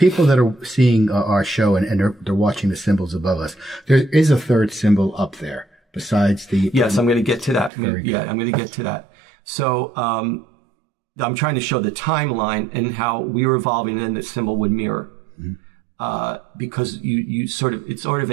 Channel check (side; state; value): left; drops out; at 7.7 s